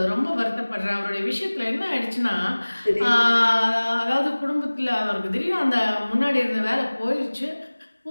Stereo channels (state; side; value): inverted; both; correlation -1.00